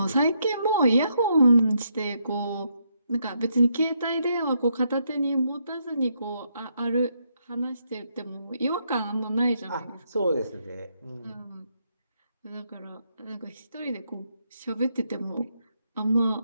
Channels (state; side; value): inverted; both; correlation -0.77